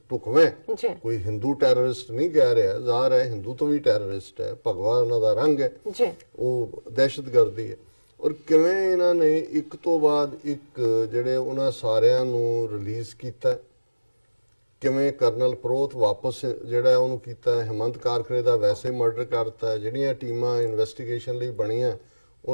ਢੁਕਵੇਂ, ਕੋਈ ਹਿੰਦੂ ਟੈਰਰਿਸਟ ਨਹੀਂ ਕਹਿ ਰਿਹਾ, ਜ਼ਾਹਰ ਹੈ ਹਿੰਦੂ ਤੋਂ ਵੀ ਟੈਰਰਿਸਟ ਹੈ, ਭਗਵਾ ਉਹਨਾਂ ਦਾ ਰੰਗ ਹੈ, ਉਹ ਦਹਿਸ਼ਤਗਰਦੀ ਹੈ। ਔਰ ਕਿਵੇਂ ਇਹਨਾਂ ਨੇ ਇੱਕ ਤੋਂ ਬਾਅਦ ਇੱਕ ਜਿਹੜੇ ਉਹਨਾਂ ਸਾਰਿਆਂ ਨੂੰ ਰਿਲੀਜ਼ ਕੀਤਾ, ਕਿਵੇਂ ਕਰਨਲ ਪ੍ਰੋਤ ਵਾਪਸ ਜਿਹੜਾ ਉਹਨੂੰ ਕੀਤਾ, ਹਿੰਮਤ ਕਾਰਕਰੇ ਦਾ ਵੈਸੇ ਮਰਡਰ ਕਰਤਾ। ਜਿਹੜੀਆਂ ਟੀਮਾਂ ਇਨਵੈਸਟੀਗੇਸ਼ਨ ਲਈ ਬਣੀਆਂ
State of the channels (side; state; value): both; inverted; correlation -1.00